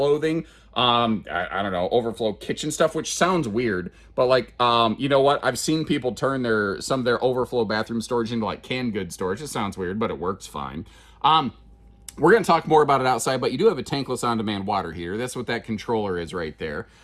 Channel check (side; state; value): both; identical; correlation 1.00